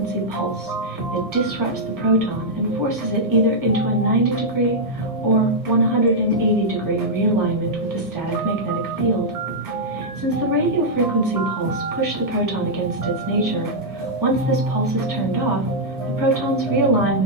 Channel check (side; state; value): both; normal; correlation -0.06